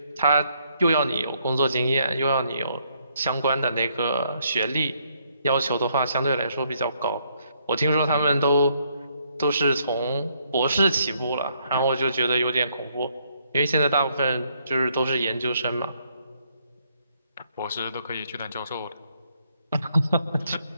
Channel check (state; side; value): inverted; both; correlation -0.72